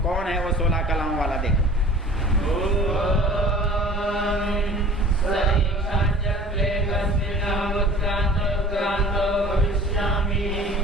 कौन है वो 16 कलाओं वाला? देखो,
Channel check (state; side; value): normal; both; correlation 0.45